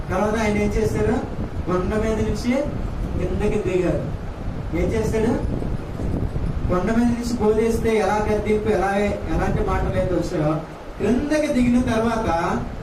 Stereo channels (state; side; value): identical; both; correlation 1.00